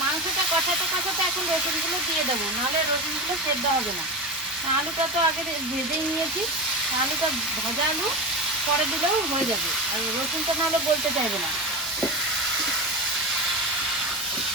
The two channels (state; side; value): normal; both; correlation 0.19